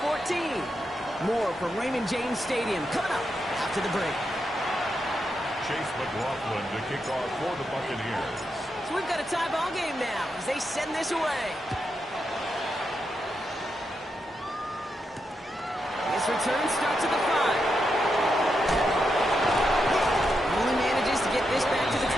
14. More from Raymond James Stadium coming up after the break. Chase McLaughlin to kick off for the Buccaneers. So we've got a tie ball game now as they send this away. This return starts at the 5. Only manages to get this back to the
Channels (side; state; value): both; normal; correlation 0.84